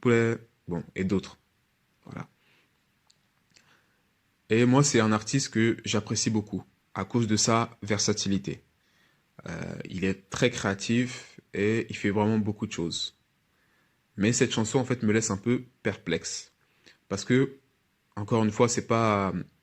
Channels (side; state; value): both; identical; correlation 1.00